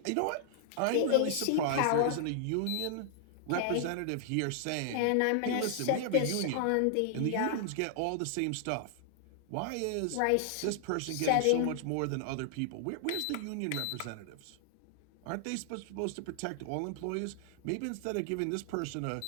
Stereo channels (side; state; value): both; different; correlation 0.00